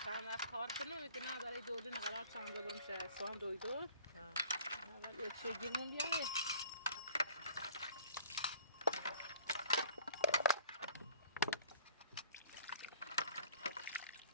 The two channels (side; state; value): both; inverted; correlation -0.49